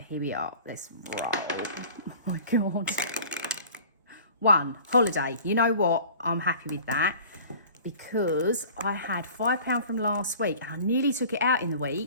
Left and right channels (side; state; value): both; inverted; correlation -0.45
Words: here we are. Let's roll. Oh my God. 1, holiday. You know what? I'm happy with that because I had £5 from last week and I nearly took it out in the